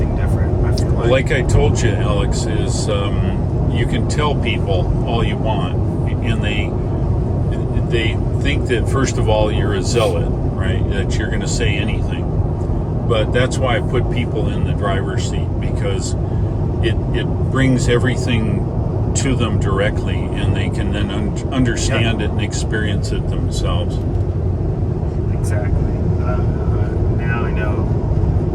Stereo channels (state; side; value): identical; both; correlation 1.00